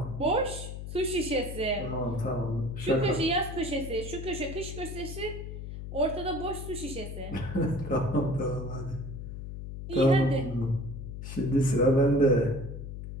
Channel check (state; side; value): noise; left; hum, 8 dB below the sound